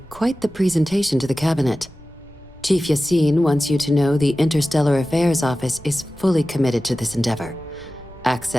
quite the presentation to the Cabinet. Chief Yassine wants you to know the Interstellar Affairs Office is fully committed to this endeavor,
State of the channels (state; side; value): noise; left; rumble, 25 dB below the sound